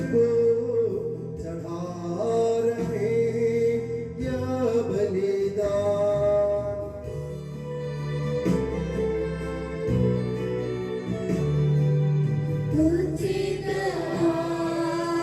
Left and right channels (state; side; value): identical; both; correlation 1.00